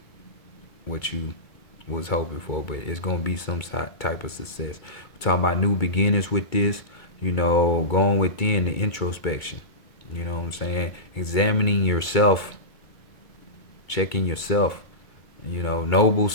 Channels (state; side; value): late; right; 2.3 ms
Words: what you was hoping for, but it's gonna be some type of success. We're talking about new beginnings with this, going within the introspection. You know what I'm saying? Examining yourself, checking yourself, noble